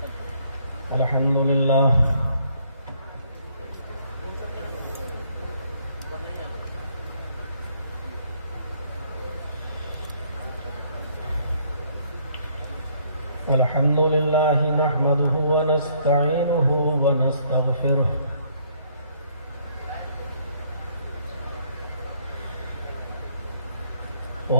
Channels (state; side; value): inverted; both; correlation -0.66